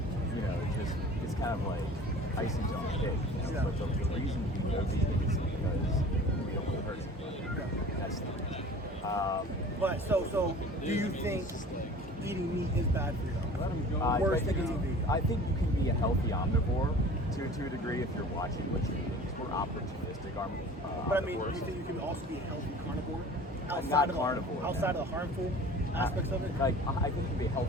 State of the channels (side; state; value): both; normal; correlation 0.43